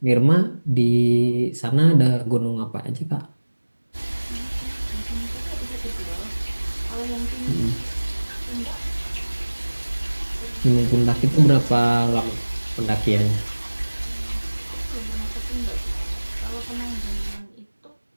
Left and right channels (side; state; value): both; inverted; correlation -1.00